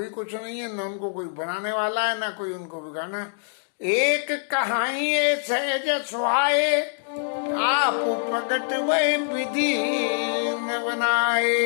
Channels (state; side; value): silent; right; digital silence